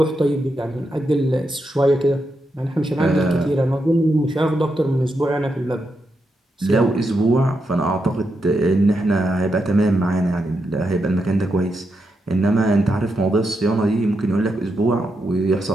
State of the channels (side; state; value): both; normal; correlation 0.84